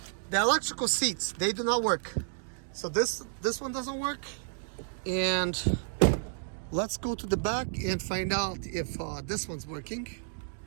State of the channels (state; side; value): silent; left; digital silence